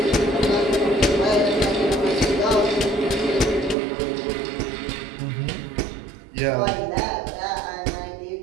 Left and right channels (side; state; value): left; drops out; at 3.8 s